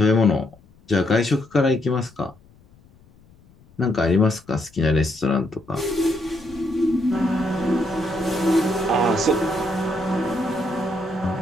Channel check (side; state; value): left; noise; rumble, 28 dB below the sound